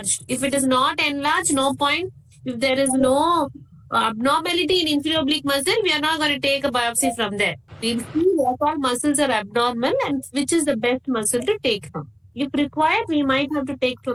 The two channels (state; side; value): identical; both; correlation 1.00